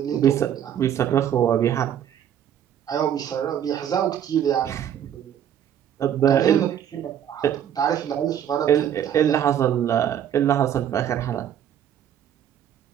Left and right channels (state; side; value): quieter; left; 9.8 dB